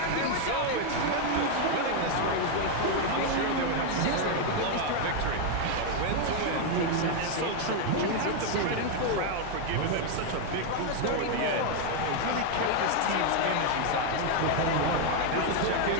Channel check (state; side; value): different; both; correlation 0.01